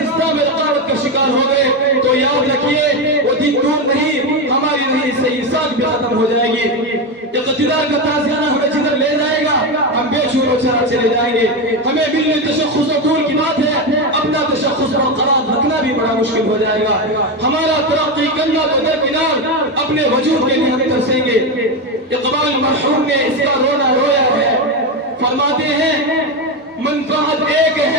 اسلام رقابت کا شکار ہو گئے، تو یاد رکھیے وہ دن دور نہیں، ہماری نہیں صحیح ساتھ بھی ختم ہو جائے گی۔ اقتدار کا تازیانہ ہمیں جدھر لے جائے گا ہم بے شور و چرا چلے جائیں گے۔ ہمیں ملنے تشخص و دور کی بات ہے، اپنا تشخص برقرار رکھنا بھی بڑا مشکل ہو جائے گا۔ ہمارا ترقی کرنا تو درکنار، اپنے وجود کے لیے ہم ترسیں گے۔ اقبال مرحوم نے اس کا رونا رویا ہے، فرماتے ہیں منفعت ایک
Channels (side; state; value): both; normal; correlation 0.13